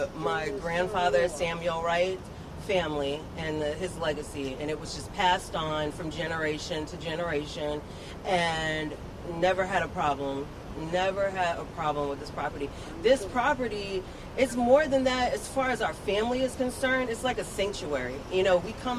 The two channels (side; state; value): both; identical; correlation 1.00